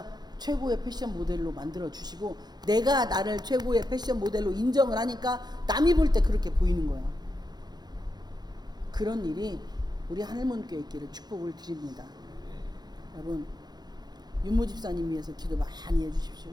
최고의 패션 모델로 만들어 주시고 내가 나를 최고의 패션 모델로 인정을 하니까 남이 볼 때 그렇게 보이는 거야. 그런 일이 우리 하늘문교회 있기를 축복을 드립니다. 여러분 윤모 집사님 위해서 기도 많이 해주십시오.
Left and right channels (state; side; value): late; left; 0.20 ms